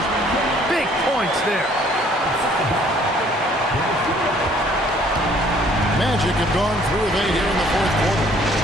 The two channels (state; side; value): normal; both; correlation 0.59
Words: big points there. Magic have gone through with 8 here in the fourth quarter.